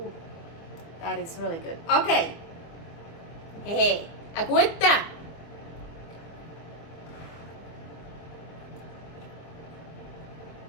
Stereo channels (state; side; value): late; right; 24 ms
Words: that is really good. Okay. Hey, agüita.